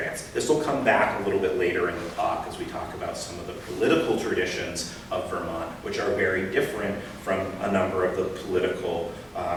This will come back a little bit later in the talk as we talk about some of the political traditions of Vermont, which are very different from a number of the political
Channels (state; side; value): identical; both; correlation 1.00